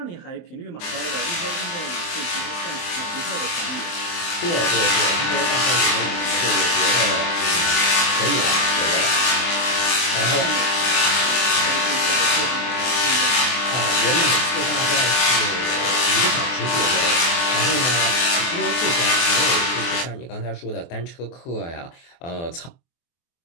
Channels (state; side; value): late; right; 23 ms